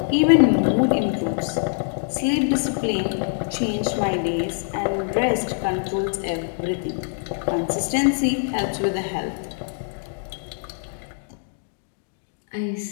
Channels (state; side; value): silent; right; digital silence